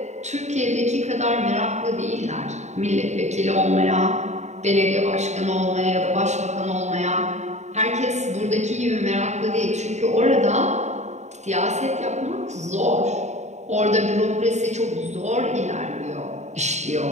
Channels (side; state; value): left; late; 0.33 ms